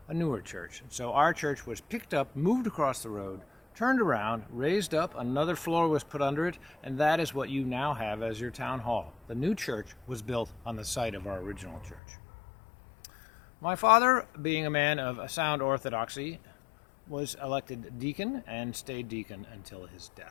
a newer church. So our church was picked up, moved across the road, turned around, raised up, another floor was put under it, and that is what you now have as your town hall. The new church was built on the site of our original church. My father, being a man of a sound orthodoxy, was elected deacon and stayed deacon until his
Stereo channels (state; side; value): drops out; right; at 12.0 s